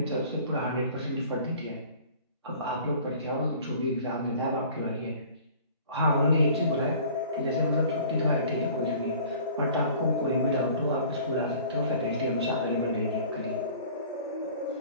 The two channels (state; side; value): inverted; both; correlation -0.48